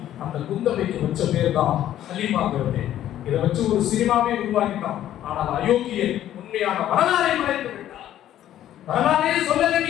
அந்த குந்தவைக்கு வச்ச பேர் தான் ஹலீமாங்கிறது. இதை வச்சு ஒரு சினிமாவே உருவாக்கிட்டான். ஆனால் அயோக்கியன் உண்மையான வரலாறை மறைத்து விட்டார். வரலாறே சொல்லல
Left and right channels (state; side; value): quieter; right; 12.1 dB